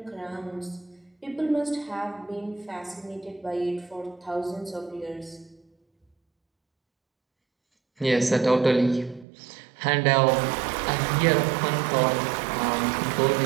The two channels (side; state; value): left; drops out; at 9.2 s